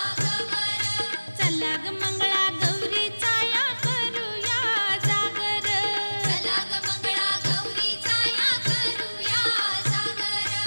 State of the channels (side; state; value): both; inverted; correlation -1.00